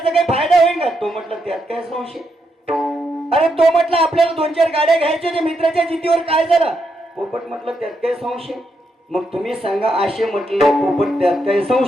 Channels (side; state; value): both; normal; correlation 0.80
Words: काही फायदा होईल का? तो म्हटलं त्यात काय संशय. अरे तो म्हटलं आपल्याला 2-4 गाड्या घ्यायच्या होत्या, मित्राच्या जिद्दीवर काय झालं? पोपट म्हटलं त्यात काय संशय. मग तुम्ही सांगा, असे म्हटलं पोपट त्यात काय